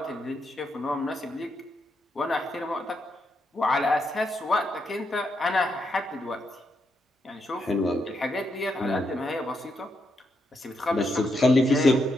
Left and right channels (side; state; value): both; normal; correlation 0.81